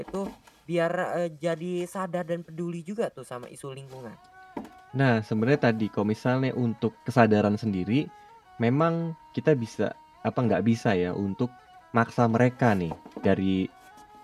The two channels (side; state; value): both; identical; correlation 1.00